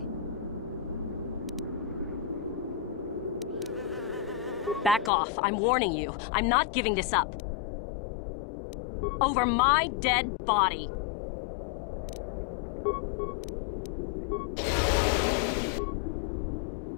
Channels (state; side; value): drops out; right; at 5.1 s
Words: Back off. I'm warning you. I'm not giving this up. Over my dead body.